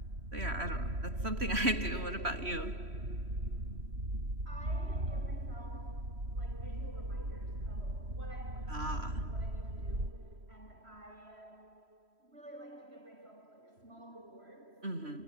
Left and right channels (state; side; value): late; left; 3.1 ms